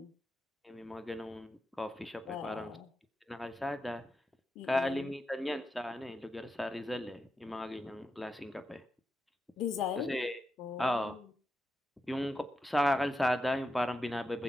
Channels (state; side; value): normal; both; correlation 0.87